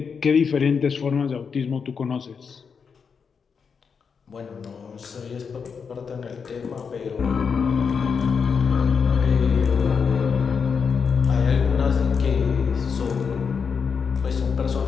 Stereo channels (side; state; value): right; quieter; 6.0 dB